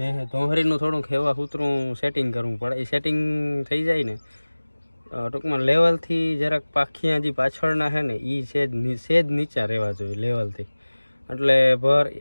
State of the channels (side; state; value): both; inverted; correlation -1.00